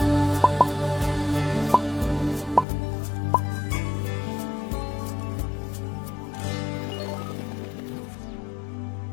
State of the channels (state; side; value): drops out; right; at 2.7 s